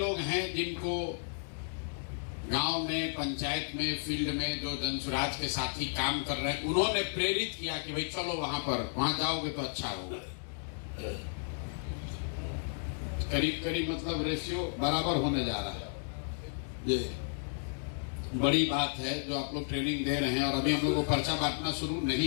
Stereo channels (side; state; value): right; silent; digital silence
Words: हैं जिनको गांव में, पंचायत में, फील्ड में जो जनसुराज के साथी काम कर रहे हैं, उन्होंने प्रेरित किया कि भाई चलो वहां जाओगे तो अच्छा होगा। करीब मतलब रेशियो बराबर होने जा रहा है। ये बड़ी बात है जो आप लोग ट्रेनिंग दे रहे हैं और अभी हम लोग को पर्चा बांटना शुरू